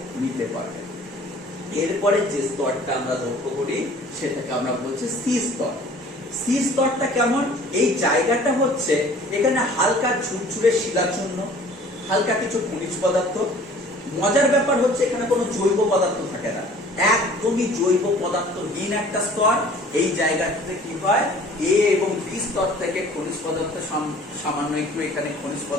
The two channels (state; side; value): normal; both; correlation 0.50